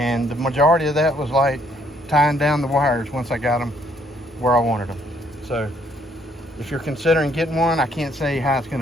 the majority of that was like tying down the wires once I got them where I wanted them. So if you're considering getting one, I can't say how it's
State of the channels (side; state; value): both; normal; correlation 0.67